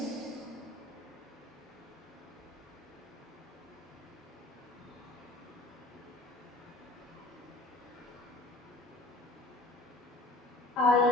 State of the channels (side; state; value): both; normal; correlation 0.45